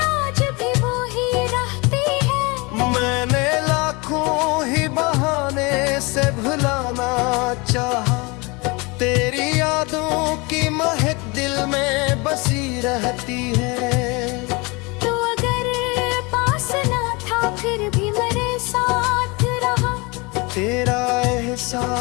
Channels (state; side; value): quieter; right; 27.0 dB